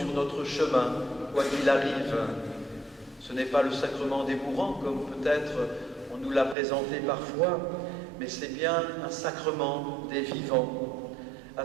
notre chemin, quoi qu'il arrive. Ce n'est pas le sacrement des mourants, comme peut-être on nous l'a présenté parfois, mais c'est bien un sacrement des vivants, à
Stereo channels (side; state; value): left; drops out; at 6.6 s